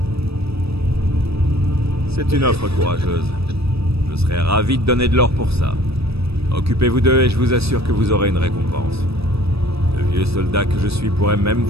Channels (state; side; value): late; left; 0.78 ms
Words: C'est une offre courageuse. Je serais ravi de donner de l'or pour ça. Occupez-vous d'eux et je vous assure que vous aurez une récompense. Le vieux soldat que je suis pourrait même